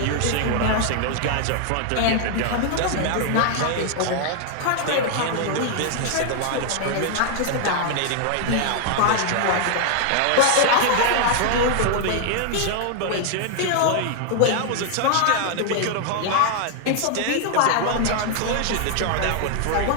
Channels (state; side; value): different; both; correlation 0.00